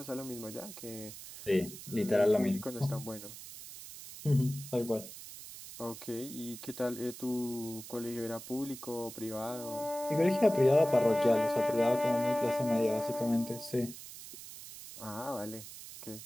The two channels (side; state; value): right; noise; hiss, 13 dB below the sound